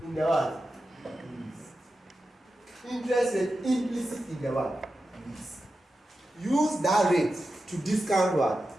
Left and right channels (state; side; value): normal; both; correlation 0.91